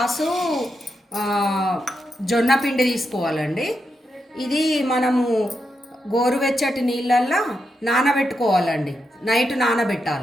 జొన్న పిండి తీసుకోవాలండి. ఇది మనము గోరువెచ్చటి నీళ్ళల్లో నానబెట్టుకోవాలండి, నైట్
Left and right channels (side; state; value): both; normal; correlation 0.84